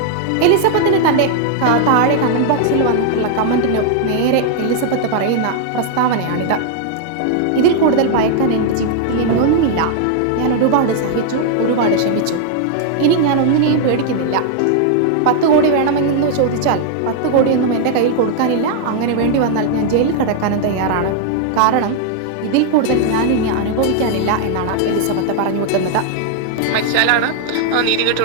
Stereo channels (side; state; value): both; different; correlation 0.00